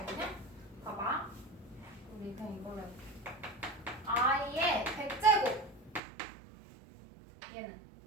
봐봐. 우리 그냥 이걸로 해볼게. i의 100제곱. 얘는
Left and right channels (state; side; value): drops out; left; at 6.0 s